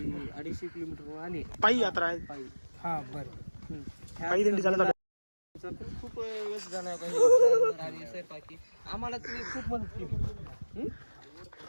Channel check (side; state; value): both; inverted; correlation -1.00